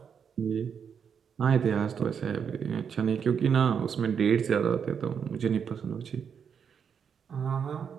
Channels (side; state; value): left; quieter; 7.1 dB